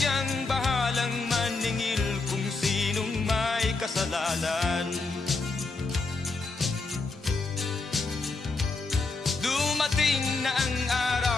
bahalang maningil kung sinong may kasalanan. Dumating na ang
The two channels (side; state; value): right; quieter; 3.8 dB